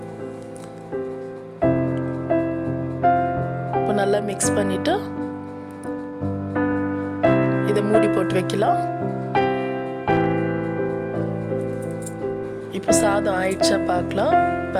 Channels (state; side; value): identical; both; correlation 1.00